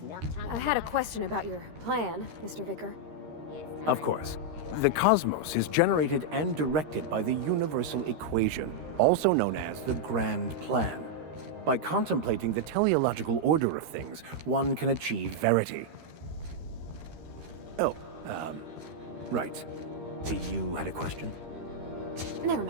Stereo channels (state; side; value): late; left; 13 ms